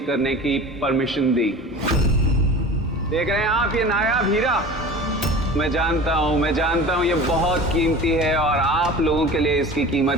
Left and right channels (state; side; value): normal; both; correlation 0.37